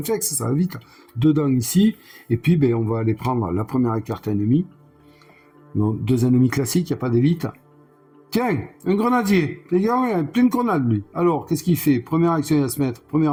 ça va vite. 2 dents ici, et puis ben, on va aller prendre la première carte ennemie. Donc 2 ennemis classiques, il n'y a pas d'élite. Tiens, un grenadier, les gars, il a plein de grenades lui. Alors, qu'est-ce qu'il fait? Première action, il va se mettre,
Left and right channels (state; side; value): identical; both; correlation 1.00